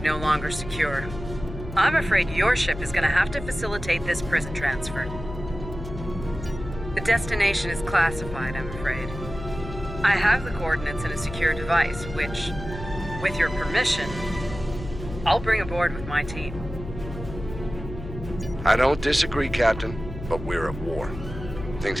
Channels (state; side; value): noise; left; hum, 10 dB below the sound